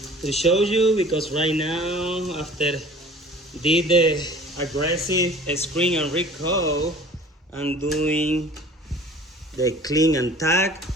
to show you, because right now after did the aggressive screen and recoat, I'm doing the clean and tack.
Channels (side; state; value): both; normal; correlation 0.46